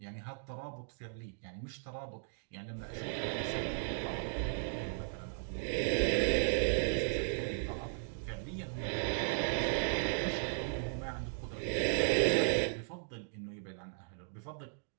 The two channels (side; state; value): left; silent; digital silence